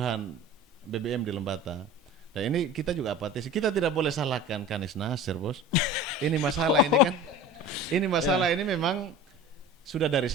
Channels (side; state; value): both; normal; correlation 0.37